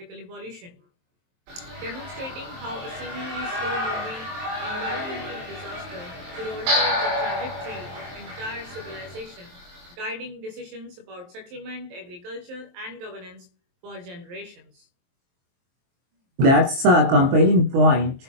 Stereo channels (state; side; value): late; left; 23 ms